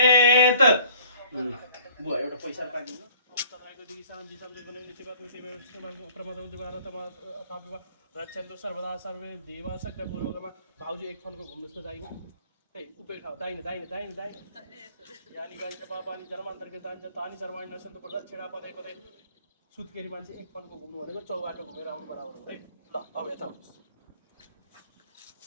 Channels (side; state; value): both; inverted; correlation -0.54